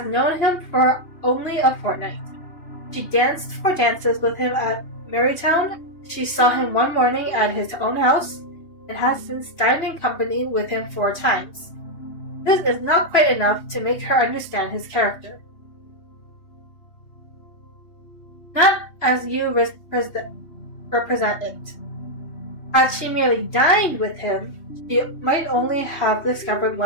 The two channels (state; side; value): late; right; 3.0 ms